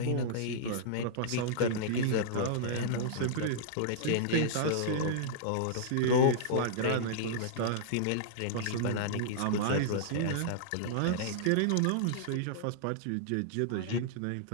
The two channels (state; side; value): different; both; correlation -0.02